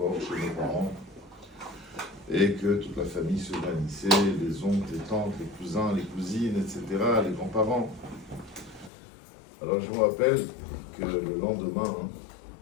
chez nos parents, et que toute la famille se réunissait, les oncles, les tantes, les cousins, les cousines, etc., les grands-parents. Alors je me rappelle que le lendemain,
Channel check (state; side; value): drops out; right; at 8.9 s